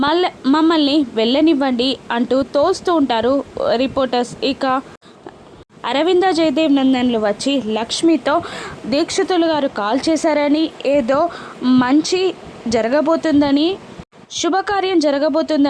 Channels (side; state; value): both; identical; correlation 1.00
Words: మమ్మల్ని వెళ్ళనివ్వండి అంటూ తోస్తూ ఉంటారు రిపోర్టర్స్. ఇక అరవింద జయదేవ్ నందన్లు వచ్చి లక్ష్మితో దీక్షితులు గారు కాల్ చేశారని, ఏదో మంచి జరగబోతుందని, శుభకార్యం